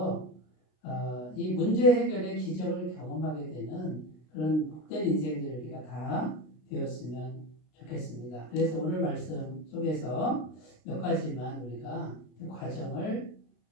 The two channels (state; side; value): late; right; 33 ms